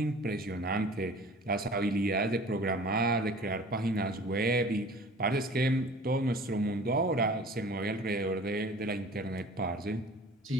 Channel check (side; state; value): both; normal; correlation 0.45